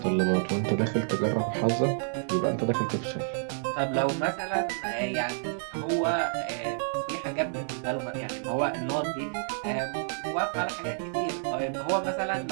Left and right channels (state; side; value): silent; left; 59 dB below the other